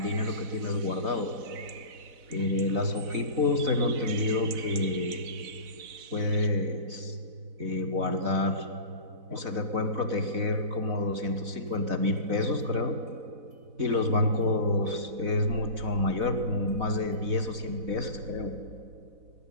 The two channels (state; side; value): late; left; 4.0 ms